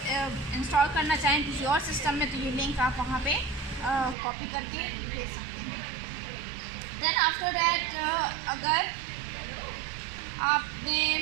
इंस्टॉल करना चाहें किसी और सिस्टम में तो ये लिंक आप वहाँ पे कॉपी करके भेज सकते हैं। देन आफ्टर दैट अगर आपने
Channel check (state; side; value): drops out; left; at 4.2 s